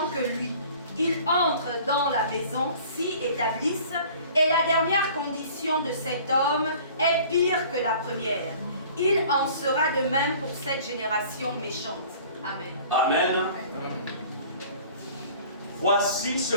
que lui. Ils entrent dans la maison, s'y établissent Et la dernière condition de cet homme est pire que la première. Il en sera de même pour cette génération méchante. Amen. Amen. Voici ce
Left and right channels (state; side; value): inverted; both; correlation -0.48